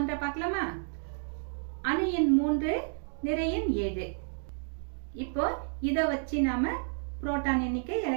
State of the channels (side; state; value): left; silent; digital silence